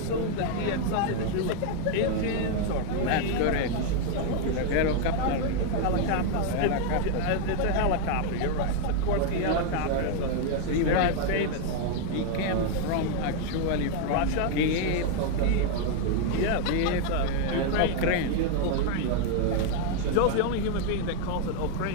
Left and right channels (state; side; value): different; both; correlation 0.00